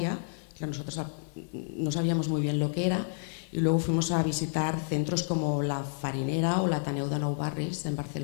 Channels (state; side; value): silent; right; digital silence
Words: que nosotros no sabíamos muy bien lo que era, y luego fuimos a visitar centros como la Farinera o la Ateneu de Nou Barris en